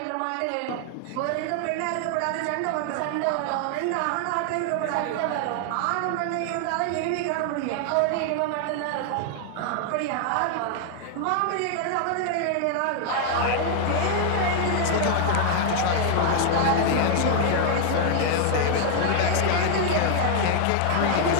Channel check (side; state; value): both; different; correlation 0.00